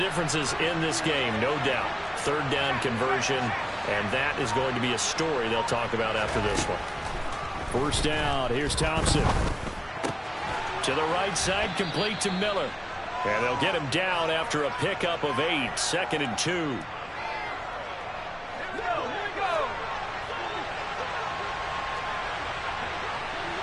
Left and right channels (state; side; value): identical; both; correlation 1.00